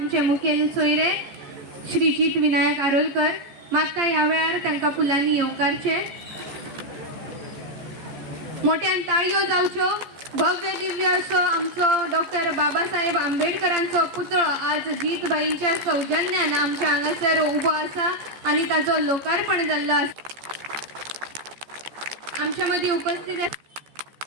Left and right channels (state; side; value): late; left; 15 ms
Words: मुखेल सोयरे श्रीजीत विनायक आरोलकर मागता या वेळार तांकां फुलांनी येवकारचे. मोठ्यान ताळयो जावच्यो. भव्य दिव्य असो आमचो डॉक्टर बाबासाहेब आंबेडकरांचो पुतळो आज जीतबाईंच्या सौजन्यान आमच्या हांगासर उबो आसा आणि ताचो लोकार्पण जाल्लो आसा. आमच्या मदीं उपस्थित